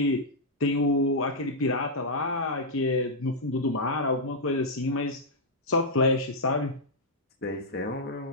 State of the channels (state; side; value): normal; both; correlation -0.07